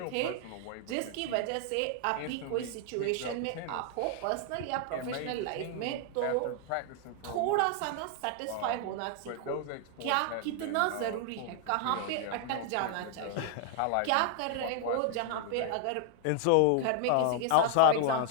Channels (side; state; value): both; different; correlation 0.00